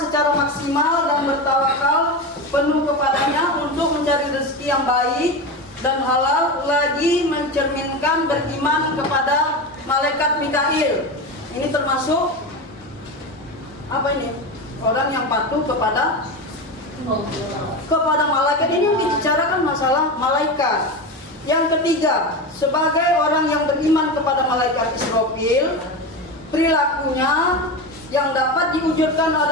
maksimal dan bertawakal penuh kepadanya untuk mencari rezeki yang baik dan halal, lagi mencerminkan beriman kepada malaikat Mikail. Ini termasuk apa ini? Orang yang patuh kepada malaikat. Ini membicarakan masalah malaikat. Yang ketiga, sebagai orang yang beriman kepada malaikat Israfil, perilakunya yang dapat diwujudkan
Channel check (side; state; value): both; normal; correlation 0.21